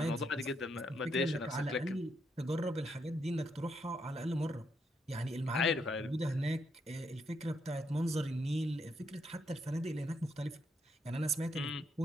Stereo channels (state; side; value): normal; both; correlation 0.77